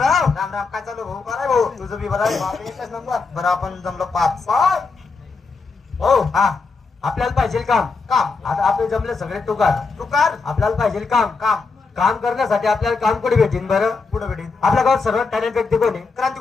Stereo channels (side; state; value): right; quieter; 4.4 dB